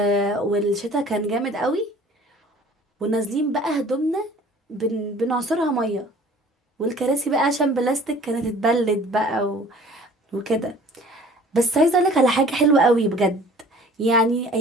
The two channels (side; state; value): both; normal; correlation 0.49